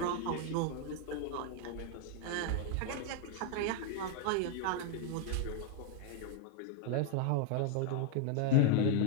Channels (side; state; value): both; different; correlation 0.00